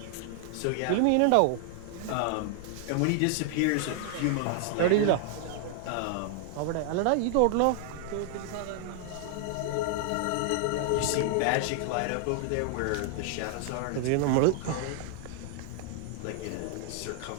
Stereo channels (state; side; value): different; both; correlation 0.00